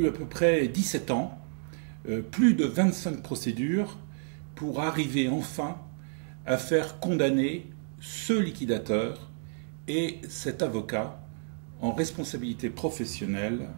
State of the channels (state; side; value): silent; left; digital silence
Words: à peu près 17 ans, plus de 25 procédures, pour arriver enfin à faire condamner ce liquidateur et cet avocat en responsabilité professionnelle.